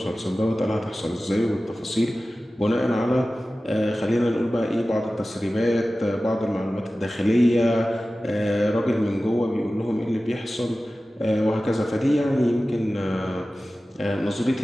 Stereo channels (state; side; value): normal; both; correlation 0.96